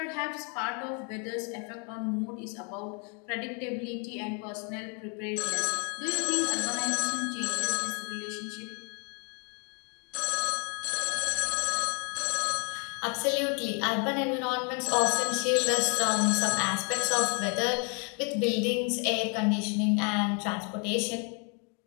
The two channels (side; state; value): right; quieter; 36.3 dB